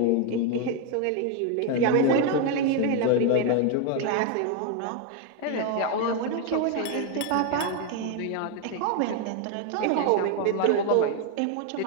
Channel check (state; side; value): different; both; correlation 0.01